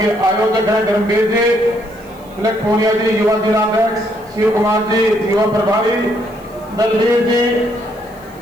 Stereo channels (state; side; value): noise; right; hiss, 28 dB below the sound